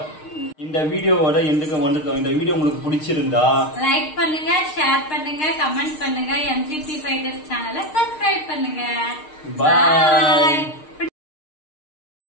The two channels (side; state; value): right; late; 6.5 ms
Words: இந்த வீடியோவோட எதுக்கு வந்துட்டோம். இந்த வீடியோ உங்களுக்கு பிடிச்சிருந்தா லைக் பண்ணுங்க, ஷேர் பண்ணுங்க, கமெண்ட் பண்ணுங்க, MGP Fighters சேனலை சப்ஸ்கிரைப் பண்ணுங்க. பாய்.